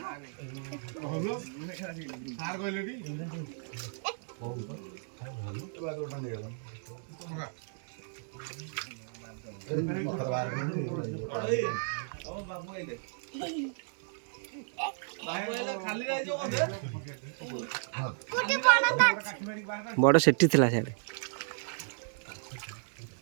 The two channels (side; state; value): left; silent; digital silence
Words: होलो सार गइलेडी बागुटा ने गेला बगा ओ बाबू आइले बड़ सेठी थिला साडे